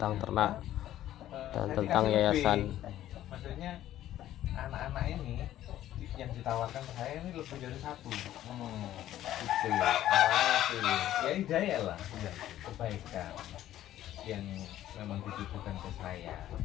ternak dan tentang yayasan. Maksudnya anak-anak ini yang ditawarkan ke saya ini lebih dari satu. Itu awalnya itu ya hidayah lah, kebaikan yang memang ditujukan ke saya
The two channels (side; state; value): right; quieter; 12.9 dB